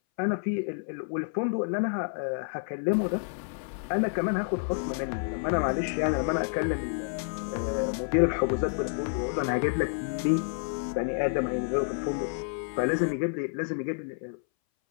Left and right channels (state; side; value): silent; right; 58 dB below the other